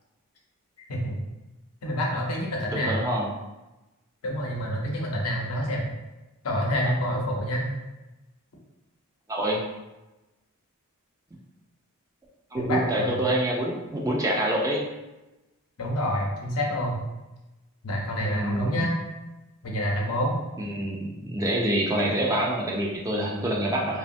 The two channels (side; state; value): both; normal; correlation 0.38